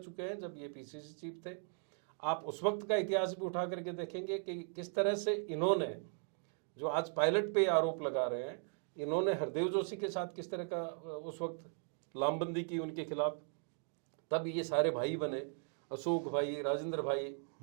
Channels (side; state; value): left; silent; 52 dB below the other